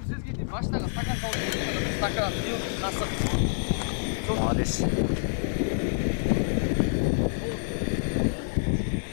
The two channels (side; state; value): right; silent; 60 dB below the other